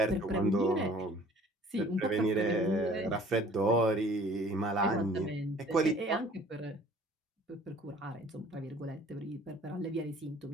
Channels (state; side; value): normal; both; correlation 0.52